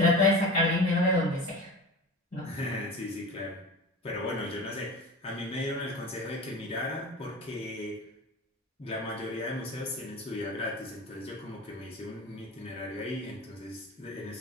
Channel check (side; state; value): both; normal; correlation 0.33